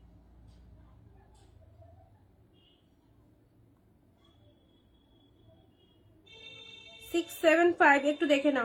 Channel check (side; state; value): both; identical; correlation 1.00